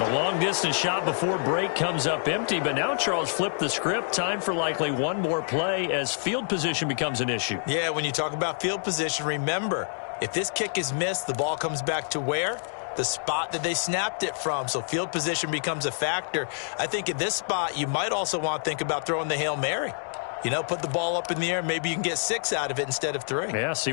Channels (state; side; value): silent; right; digital silence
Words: long-distance shot before break comes up empty, but now Charles flipped the script. Time for likely one more play as field position becomes an issue. Yeah, when you talk about field position, remember, if this kick is missed, the ball comes back to where? The spot that they snapped it from. So field position becomes a factor. I think at this spot, you might also want to think about throwing the Hail Mary. You know, put the ball up in the air. Maybe you can get 6 out of it instead of 3. Yeah, see